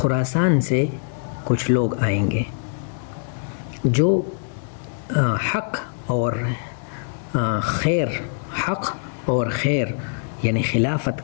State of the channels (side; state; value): right; silent; 57 dB below the other